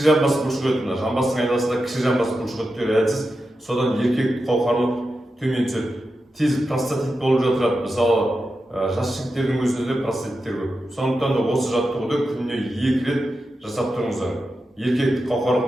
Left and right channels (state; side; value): normal; both; correlation 0.90